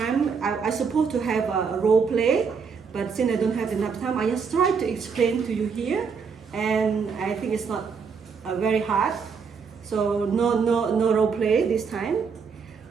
I supposed to have a role play, but since I don't have enough time, I just try to explain to you here, and I think it's not very hard. So no role play this time.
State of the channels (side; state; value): left; quieter; 5.8 dB